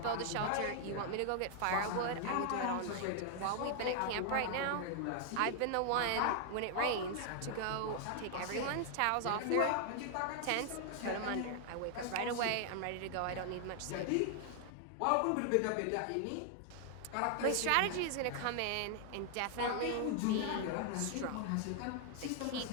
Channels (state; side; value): different; both; correlation 0.00